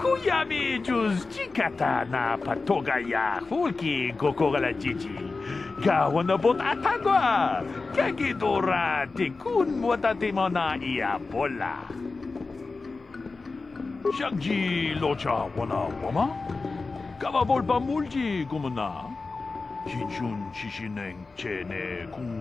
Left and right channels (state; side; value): quieter; right; 3.9 dB